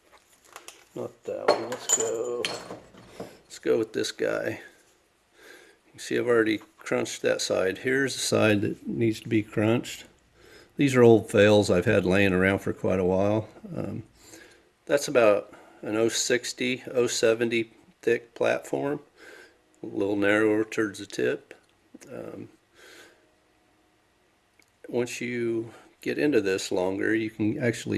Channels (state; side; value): identical; both; correlation 1.00